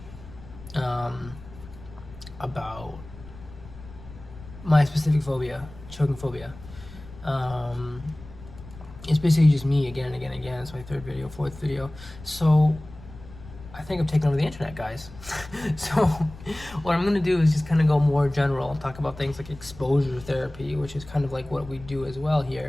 about my specific phobia, choking phobia. It's basically just me again and again and again. It's my third video, fourth video. So I think I've taken over the internet, guys. So what I'm gonna do is just kind of go more general, talk about things like exposure therapy, which is kind of like what we do as well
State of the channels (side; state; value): left; noise; rumble, 17 dB below the sound